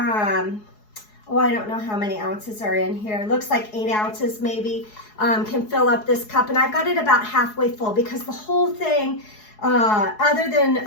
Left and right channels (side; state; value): right; late; 4.7 ms